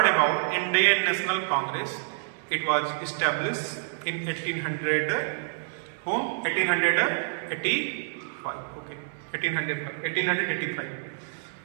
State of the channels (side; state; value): left; silent; digital silence